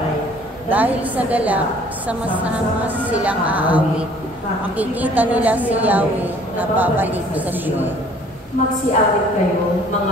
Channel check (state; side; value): normal; both; correlation 0.55